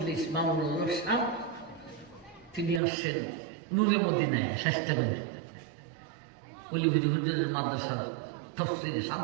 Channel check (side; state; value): left; drops out; at 2.8 s